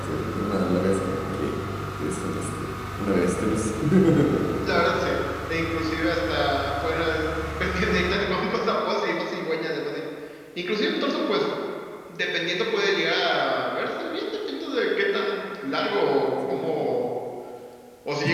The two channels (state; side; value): identical; both; correlation 1.00